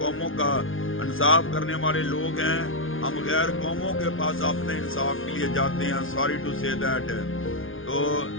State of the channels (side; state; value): right; late; 0.58 ms